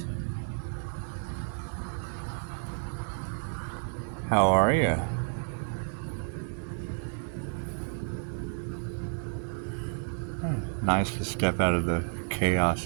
How are you? Nice to step out of the chaos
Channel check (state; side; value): silent; left; 57 dB below the other